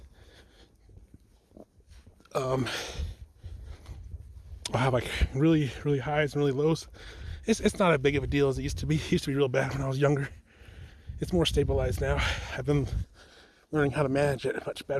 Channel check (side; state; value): both; identical; correlation 1.00